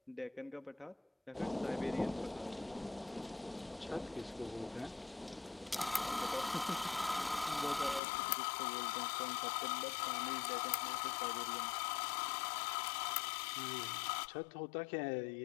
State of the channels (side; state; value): right; drops out; at 8.0 s